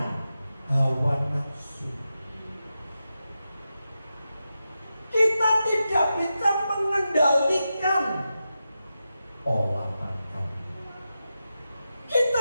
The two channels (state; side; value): inverted; both; correlation -0.90